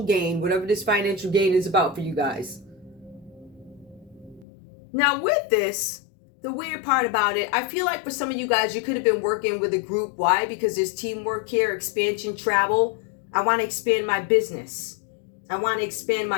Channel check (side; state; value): right; drops out; at 4.5 s